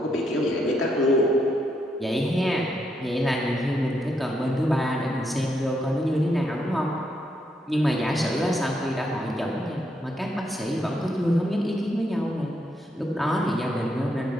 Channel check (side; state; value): both; normal; correlation 0.78